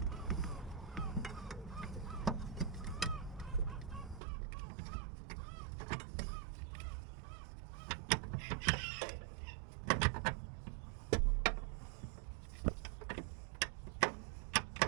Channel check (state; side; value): drops out; left; at 4.2 s